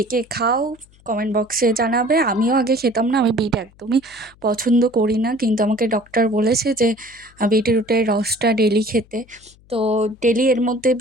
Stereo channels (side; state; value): left; noise; hum, 28 dB below the sound